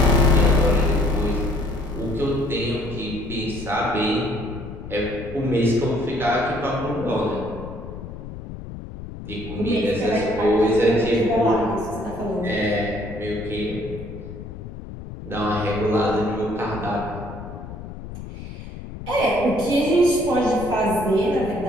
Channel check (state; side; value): noise; left; rumble, 11 dB below the sound